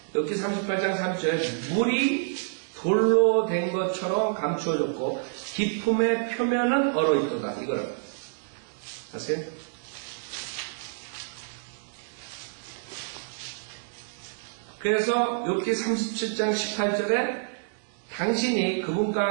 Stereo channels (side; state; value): left; silent; digital silence